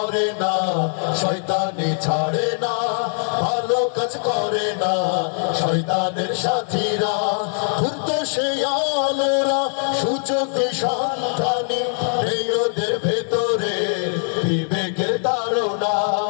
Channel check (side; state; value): right; silent; 59 dB below the other